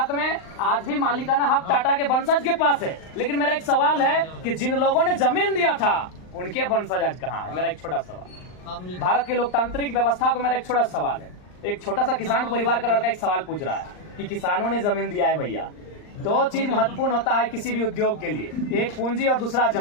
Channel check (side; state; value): right; late; 39 ms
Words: में, आज भी मालिकाना हक टाटा के वंशज के पास है। लेकिन मेरा एक सवाल है कि जिन लोगों ने जमीन दिया था उनके वंशज आज कहाँ है? मेरा एक छोटा सवाल। भारत की लोकतांत्रिक व्यवस्था को मेरा एक छोटा सवाल है। एक छोटा सा किसान परिवार का लड़का एक सवाल पूछ रहा है कि किसानों ने जमीन दिया है भैया। दो चीज महत्वपूर्ण होता है किसी भी उद्योग के लिए, एक पूंजी और दूसरा